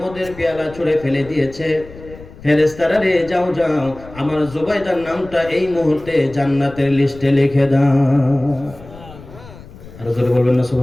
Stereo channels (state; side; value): noise; left; rumble, 18 dB below the sound